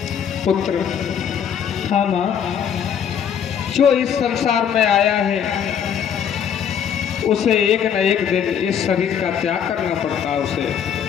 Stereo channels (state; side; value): quieter; right; 8.3 dB